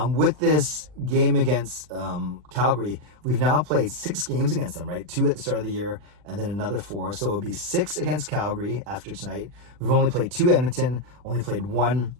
with this game against Calgary, we've now played 6 games against them, right? 2 at the start of the year and then another 4. So it would be 6 against Calgary after tonight. We've only played 2 Edmonton, only played 1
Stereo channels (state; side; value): late; left; 40 ms